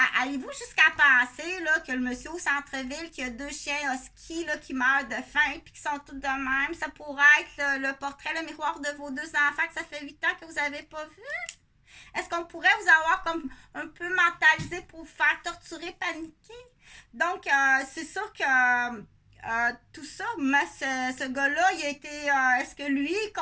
Allez-vous jusqu'à penser là, que le monsieur au centre-ville qui a 2 chiens husky là, qui meurent de faim puis qui sont tous de même, ça pourrait être le portrait, le miroir de vos 2 enfants que ça fait 8 ans que vous n'avez pas vu? Est-ce qu'on pourrait vous avoir comme un peu mentalisé pour vous faire torturer, paniquer? Donc, c'est sûr que tout ça, mais ce gars-là, il a été... est-ce que lui est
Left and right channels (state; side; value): identical; both; correlation 1.00